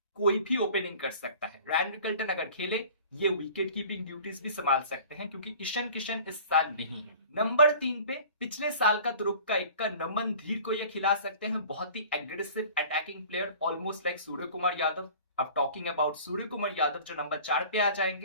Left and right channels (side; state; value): both; inverted; correlation -0.44